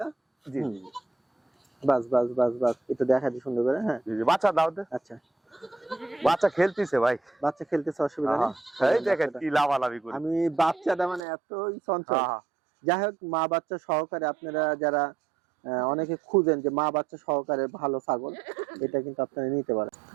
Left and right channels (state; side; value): drops out; left; at 11.2 s